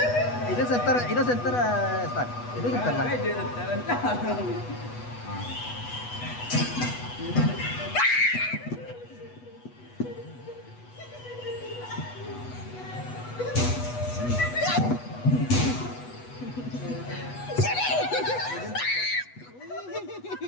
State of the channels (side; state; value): right; late; 8.2 ms